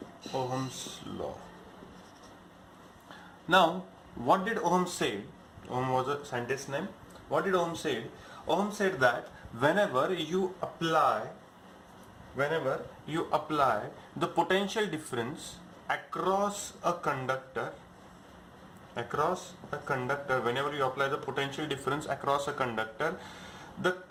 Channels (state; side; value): identical; both; correlation 1.00